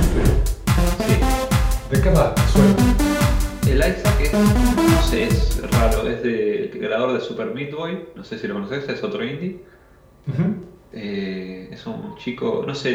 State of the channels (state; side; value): identical; both; correlation 1.00